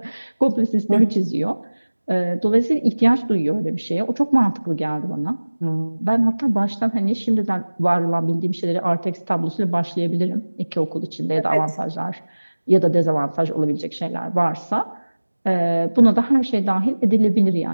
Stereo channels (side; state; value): both; inverted; correlation -1.00